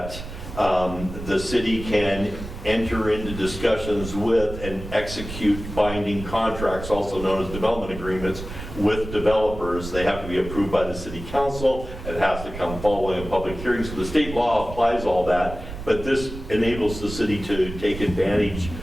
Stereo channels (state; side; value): noise; right; rumble, 10 dB below the sound